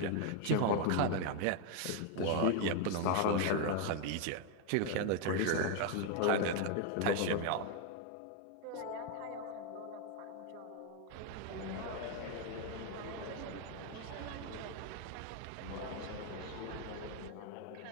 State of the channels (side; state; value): both; different; correlation 0.01